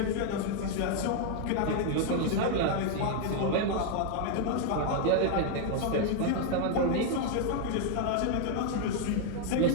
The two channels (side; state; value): both; different; correlation 0.00